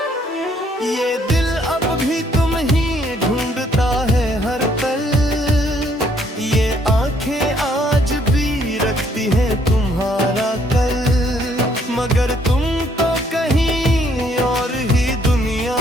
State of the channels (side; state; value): both; normal; correlation 0.67